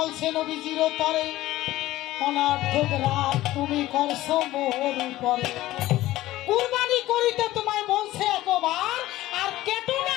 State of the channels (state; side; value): quieter; right; 16.1 dB